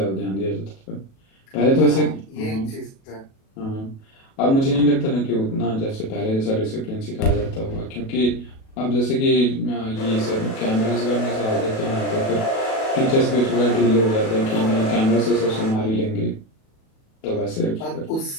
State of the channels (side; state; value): right; late; 37 ms